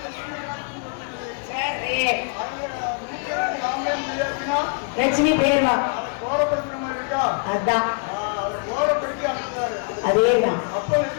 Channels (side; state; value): right; quieter; 39.5 dB